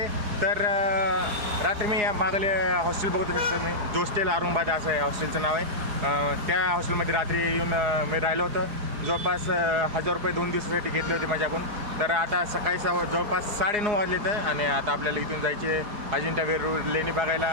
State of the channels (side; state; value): left; late; 4.9 ms